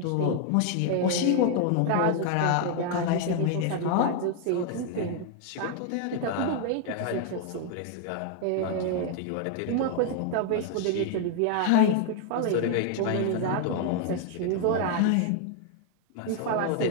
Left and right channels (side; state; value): both; different; correlation 0.00